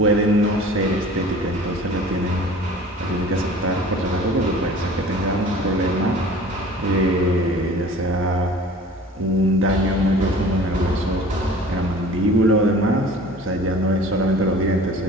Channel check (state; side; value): normal; both; correlation 0.44